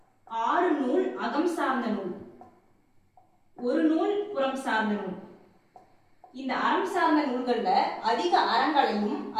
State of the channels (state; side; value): identical; both; correlation 1.00